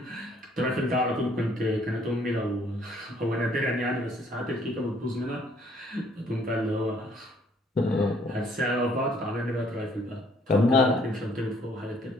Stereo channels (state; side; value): normal; both; correlation 0.63